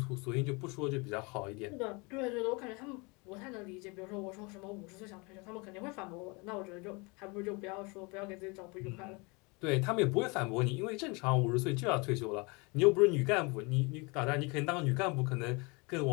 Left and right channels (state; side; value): quieter; right; 28.7 dB